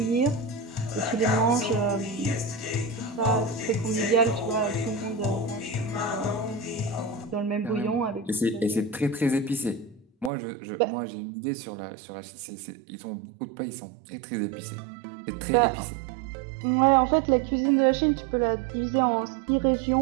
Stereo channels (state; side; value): drops out; left; at 10.3 s